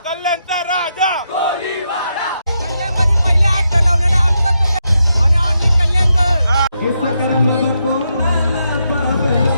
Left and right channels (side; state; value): both; inverted; correlation -0.82